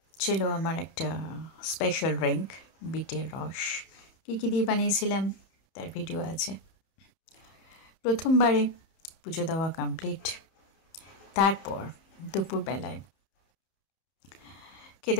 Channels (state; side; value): late; right; 31 ms